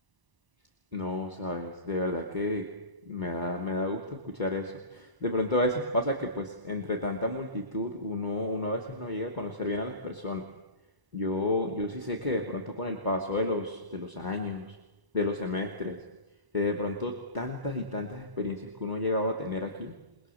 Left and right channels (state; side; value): late; left; 1.0 ms